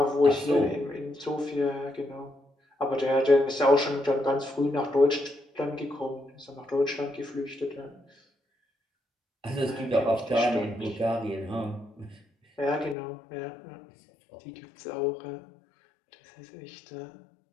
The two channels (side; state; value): right; drops out; at 13.0 s